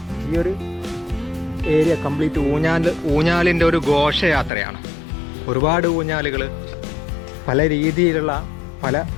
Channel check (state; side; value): drops out; right; at 4.5 s